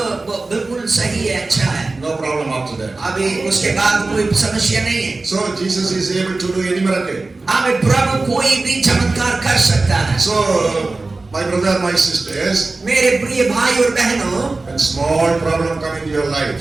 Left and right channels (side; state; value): left; quieter; 3.4 dB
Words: बिल्कुल सही है, अच्छा है। No problem after that. अभी उसके बाद कोई समस्या नहीं है। So Jesus is able to do any miracle. प्रभु कोई भी चमत्कार कर सकता है। So my brother, my sisters, मेरे प्रिय भाई और बहनों, when small problem come into your